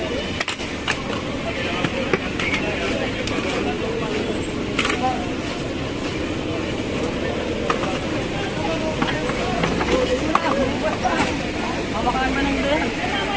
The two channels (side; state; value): both; identical; correlation 1.00